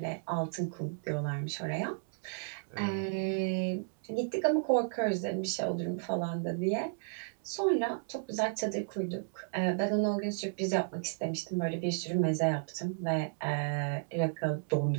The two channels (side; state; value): left; silent; digital silence